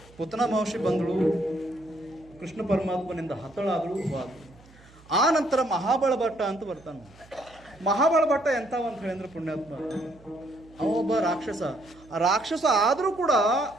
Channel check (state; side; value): noise; right; hum, 25 dB below the sound